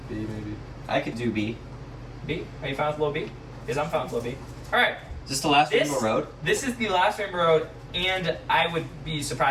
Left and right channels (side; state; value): both; identical; correlation 1.00